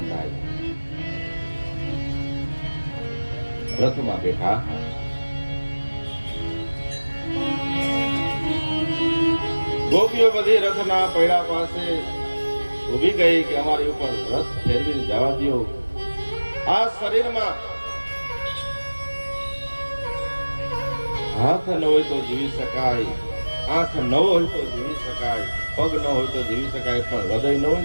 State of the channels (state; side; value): inverted; both; correlation -1.00